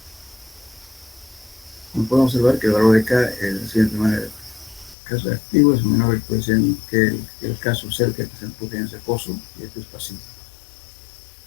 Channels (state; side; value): drops out; right; at 5.0 s